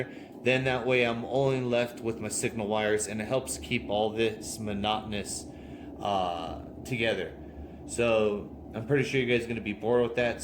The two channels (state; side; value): identical; both; correlation 1.00